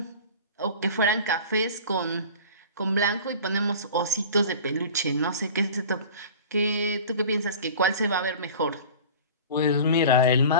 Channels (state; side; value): inverted; both; correlation -0.39